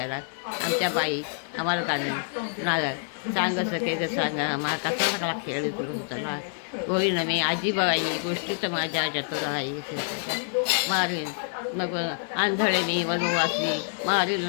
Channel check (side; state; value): right; silent; digital silence